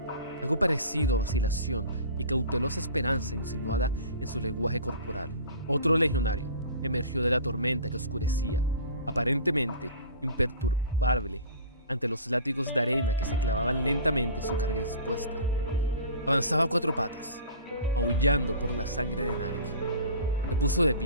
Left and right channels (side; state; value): both; inverted; correlation -0.40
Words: Algo parecido a vacilación y cautelosa esperanza insinuada en su lenguaje corporal. Otro legionario emergió de la tormenta que oscurecía, aparentemente imperturbable ante los látigos de arena que se clavaban lentamente en su carga expuesta. Avanzaba a cuatro patas, aullando por la sangre de Narek. Se puso de